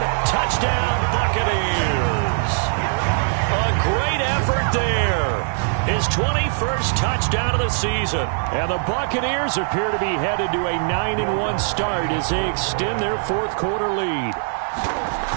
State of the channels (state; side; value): silent; left; 65 dB below the other